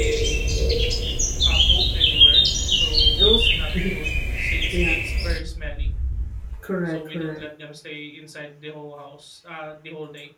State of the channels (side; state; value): both; identical; correlation 1.00